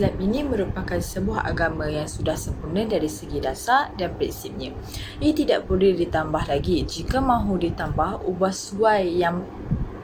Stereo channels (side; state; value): both; identical; correlation 1.00